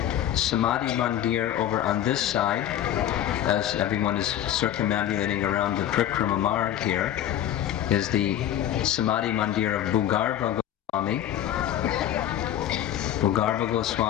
Samadhi Mandir over on this side, as everyone is circumambulating around the Prikrama Marg here, is the Samadhi Mandir of Bhugarva Goswami. Bhugarva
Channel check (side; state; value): right; quieter; 11.4 dB